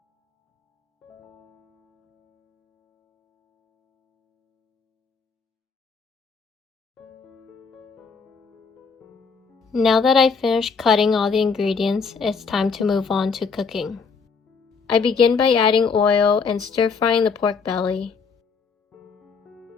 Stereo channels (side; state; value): right; quieter; 5.3 dB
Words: Now that I've finished cutting all the ingredients, it's time to move on to cooking. I begin by adding oil and stir-frying the pork belly.